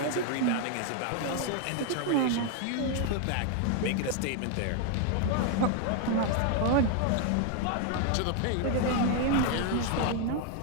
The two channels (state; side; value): different; both; correlation 0.00